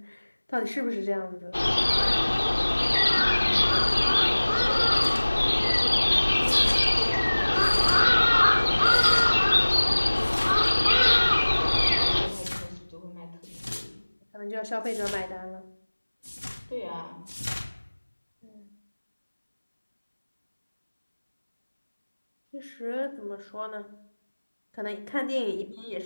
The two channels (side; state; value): both; inverted; correlation -1.00